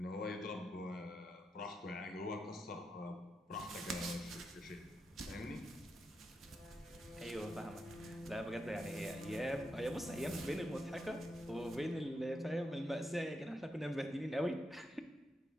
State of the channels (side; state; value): both; normal; correlation 0.84